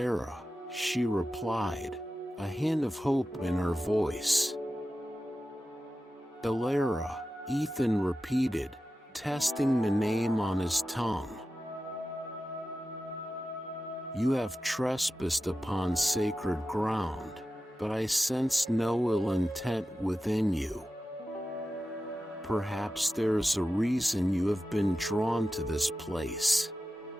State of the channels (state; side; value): normal; both; correlation 0.93